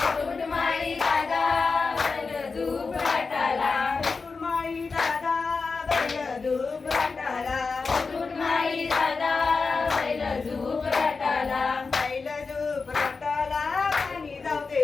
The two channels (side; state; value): right; quieter; 4.5 dB